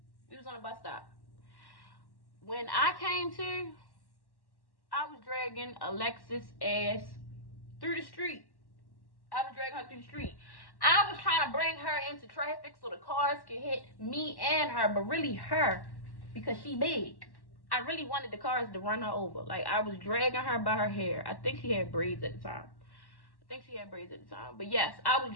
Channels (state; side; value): late; right; 1.1 ms